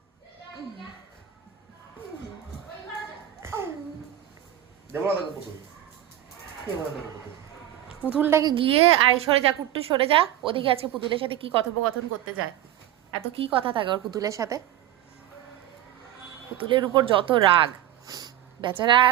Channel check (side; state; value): left; quieter; 12.4 dB